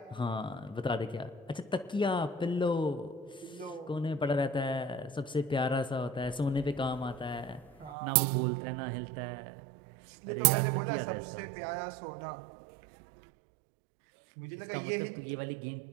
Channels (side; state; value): left; drops out; at 8.0 s